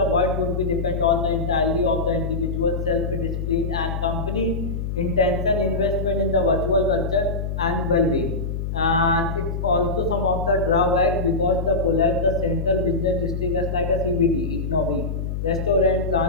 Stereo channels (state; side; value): noise; left; hum, 3 dB below the sound